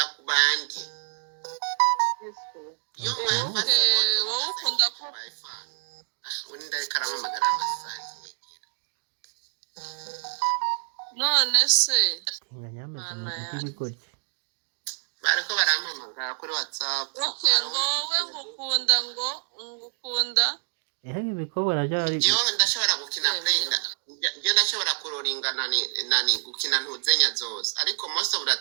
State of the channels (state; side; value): silent; left; 60 dB below the other